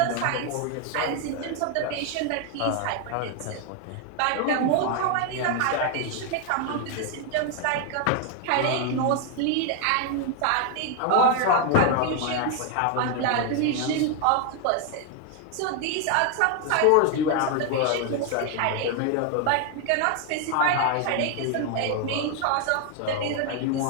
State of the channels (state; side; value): different; both; correlation 0.01